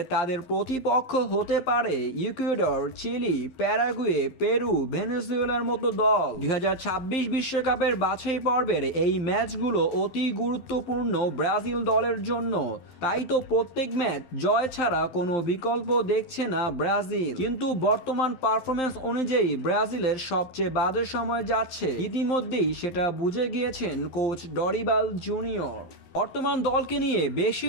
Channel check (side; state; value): right; late; 12 ms